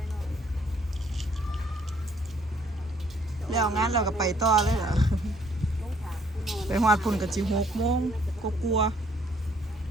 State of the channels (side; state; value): both; normal; correlation 0.64